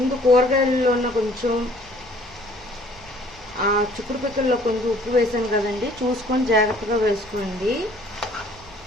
కూరగాయల్లో ఉన్న కొంచెం చిక్కుడు పిక్కల్లో కొంచెం ఉప్పు వేసాను కదండి, చూసుకొని జాగ్రత్తగా వేసుకోండి.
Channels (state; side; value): noise; right; rumble, 22 dB below the sound